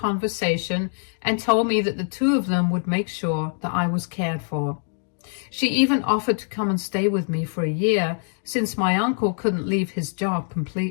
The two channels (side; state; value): right; silent; 63 dB below the other